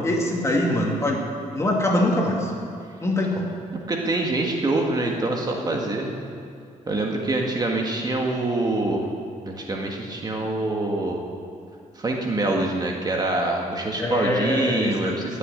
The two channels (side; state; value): both; normal; correlation 0.61